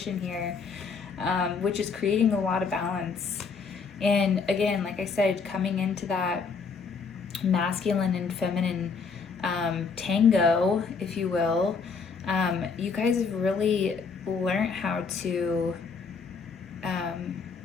here, which is creating a lot of balance. And again, like I said, coming into that masculine and feminine tango, if you will, you guys have really learned how to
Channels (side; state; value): right; quieter; 5.2 dB